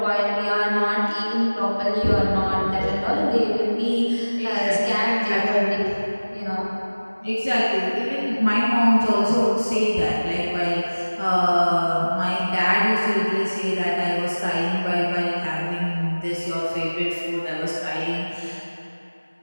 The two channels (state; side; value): inverted; both; correlation -1.00